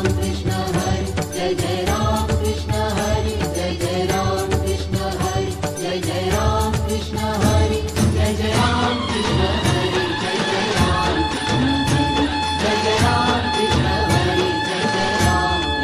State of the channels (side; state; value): both; identical; correlation 1.00